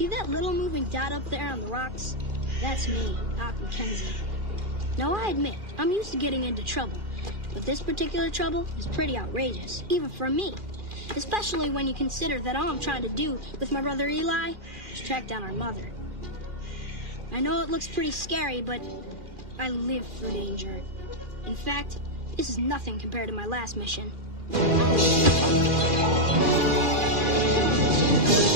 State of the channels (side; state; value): left; late; 2.4 ms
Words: that little moving dot up there on the rocks? That's me, Doc McKenzie. Now, I admit, I'm used to getting into trouble, but this particular trouble is pretty outrageous, even for me. Especially when you consider that all I'm trying to do with my brother Eli is track down our mother. I know it looks pretty scary, but I live for danger. In fact, this is nothing compared to my last mission.